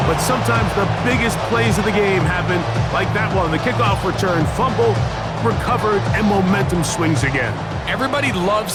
but sometimes the biggest plays of the game happen like that one. The kickoff return, fumble, recovered, and momentum swings again. Everybody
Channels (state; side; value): identical; both; correlation 1.00